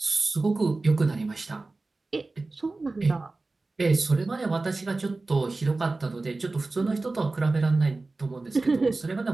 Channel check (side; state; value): left; quieter; 3.4 dB